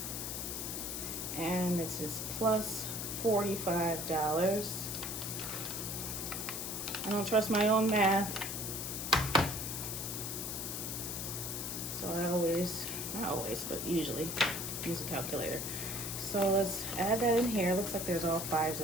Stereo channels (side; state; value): left; noise; hiss, 4 dB below the sound